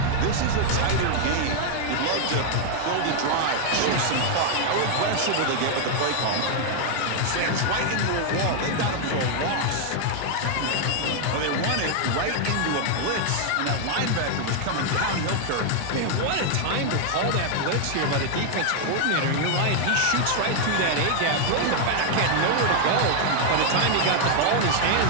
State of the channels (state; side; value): different; both; correlation 0.00